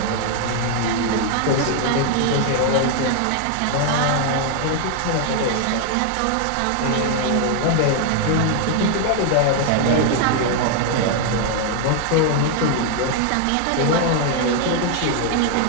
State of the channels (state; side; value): different; both; correlation 0.00